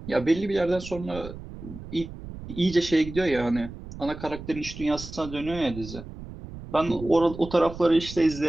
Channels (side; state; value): right; noise; rumble, 13 dB below the sound